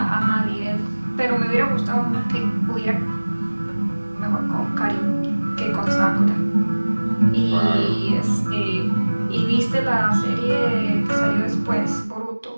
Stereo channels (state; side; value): inverted; both; correlation -1.00